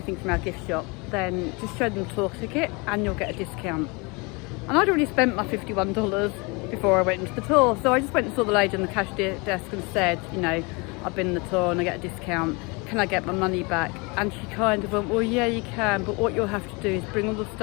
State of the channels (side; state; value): right; quieter; 28.5 dB